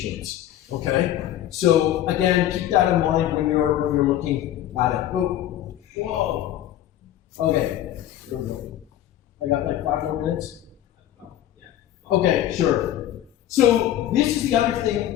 Okay? So again, keep that in mind when you're looking at it. Oh, whoa. Okay, there we go. I got like 5 more minutes. Okay, sure. So this is the other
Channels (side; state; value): right; quieter; 12.3 dB